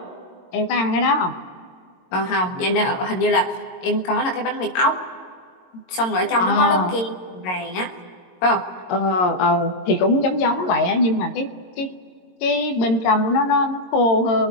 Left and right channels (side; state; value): right; late; 22 ms